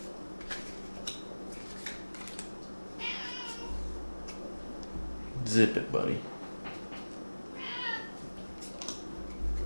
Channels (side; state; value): both; inverted; correlation -1.00